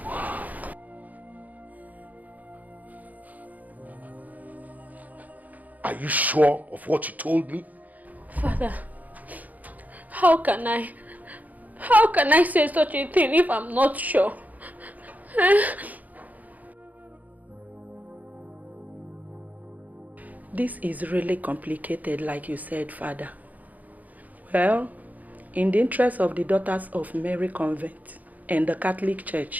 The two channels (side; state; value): left; late; 0.079 ms